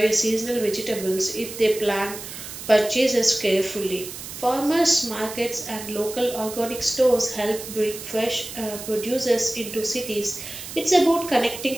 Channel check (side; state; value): right; noise; hiss, 11 dB below the sound